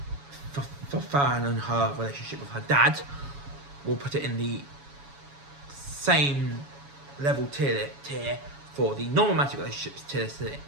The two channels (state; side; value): late; left; 7.1 ms